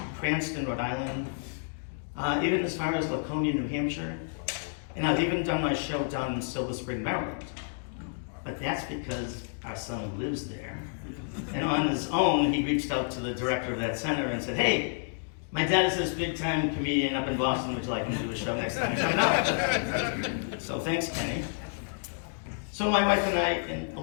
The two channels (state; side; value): silent; right; digital silence